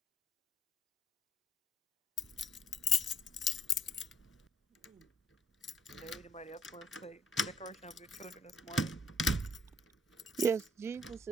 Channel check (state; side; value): normal; both; correlation 0.66